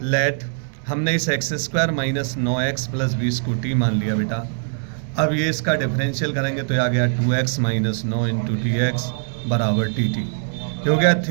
लेट हमने इस x² - 9x + 20 को t मान लिया बेटा। अब ये इसका डिफरेंशियल करेंगे तो ये आ गया 2x - 9 × dx बराबर dt। ये हो गया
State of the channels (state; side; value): silent; left; 64 dB below the other